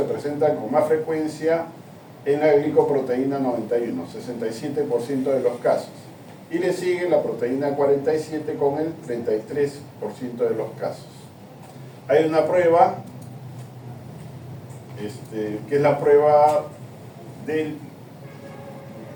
presentan con más frecuencia en la glicoproteína 91, 67% de los casos. Y le sigue la proteína 47 con el 33% de los casos. Hay una prueba, que es la prueba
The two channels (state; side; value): identical; both; correlation 1.00